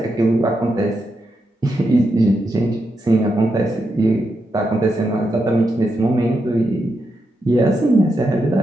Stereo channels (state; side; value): normal; both; correlation 0.84